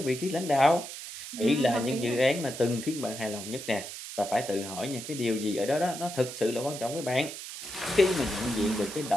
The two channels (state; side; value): noise; right; hiss, 10 dB below the sound